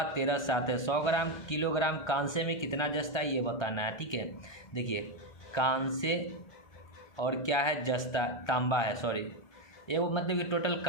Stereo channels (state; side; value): late; right; 1.3 ms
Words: 13:7 है। 100 ग्राम किलोग्राम कांसे में कितना जस्ता है ये बताना है। ठीक है, देखिए कांसे और क्या है? जस्ता, तांबा है, सॉरी, ये वो मतलब कि टोटल